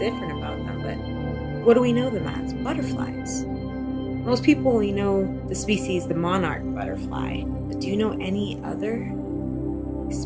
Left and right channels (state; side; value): identical; both; correlation 1.00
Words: about them. But what do we know them as? Butterflies. Most people only know the species, the monarch butterfly. But do you know any other